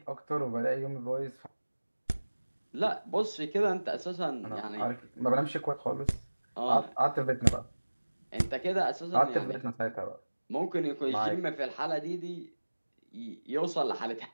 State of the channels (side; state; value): both; inverted; correlation -1.00